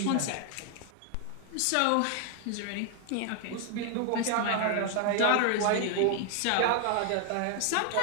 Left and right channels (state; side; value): different; both; correlation 0.00